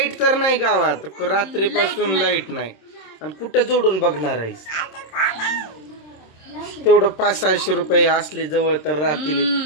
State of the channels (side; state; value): right; late; 26 ms